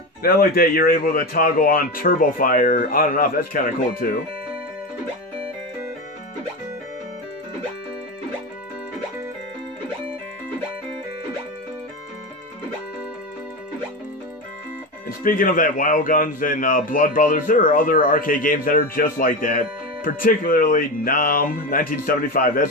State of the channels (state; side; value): normal; both; correlation 0.20